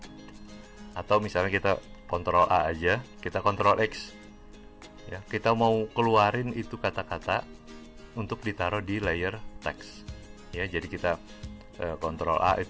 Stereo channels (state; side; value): identical; both; correlation 1.00